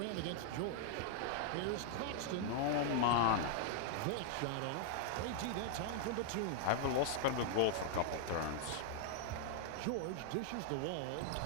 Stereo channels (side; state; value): both; different; correlation -0.01